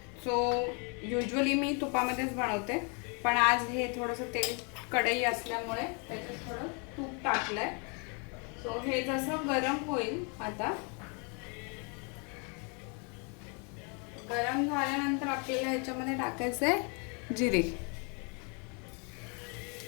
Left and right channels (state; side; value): quieter; right; 35.6 dB